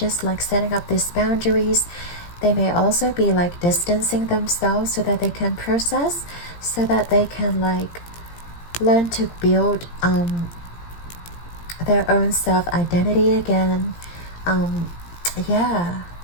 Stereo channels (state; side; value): late; right; 17 ms